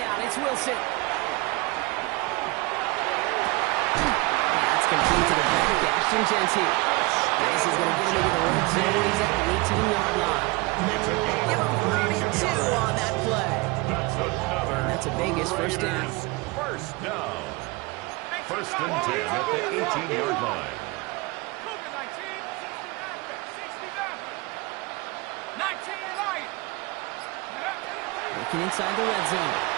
it's Wilson. That's complete to the back, Ashton Genty. This is going to get him into the red zone. He's at the 18-yard line. Give him 32 on that play. And that's a Vegas first down. First down. First and 10 at the 18-yard line. Working inside the red zone.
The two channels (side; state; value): left; quieter; 24.6 dB